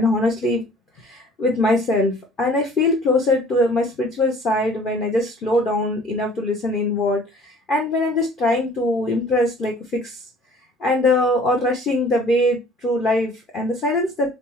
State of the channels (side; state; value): both; normal; correlation 0.51